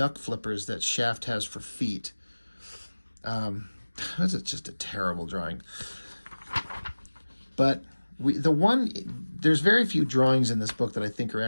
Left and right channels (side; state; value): both; inverted; correlation -1.00